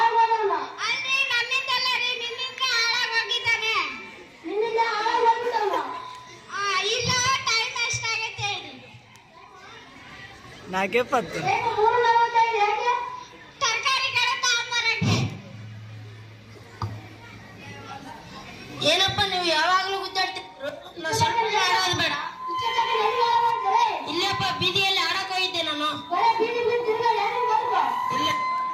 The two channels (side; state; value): both; identical; correlation 1.00